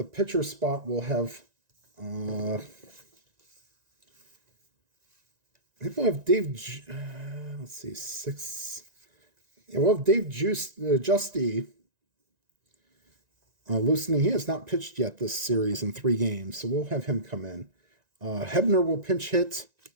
pitcher spot. We'll have I think we'll have Dave, let's see, 6. Yeah, we'll have Dave Justy loosening. He has not pitched yet this series in 3 games, so we'll have him come in. Hebner will pinch hit.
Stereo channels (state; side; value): late; left; 1.9 ms